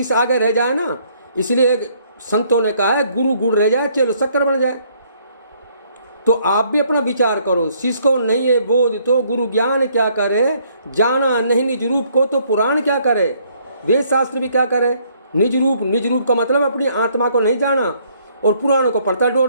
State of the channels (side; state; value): both; inverted; correlation -0.66